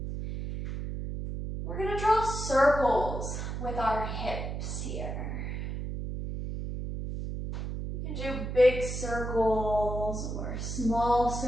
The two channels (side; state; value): right; noise; hum, 5 dB below the sound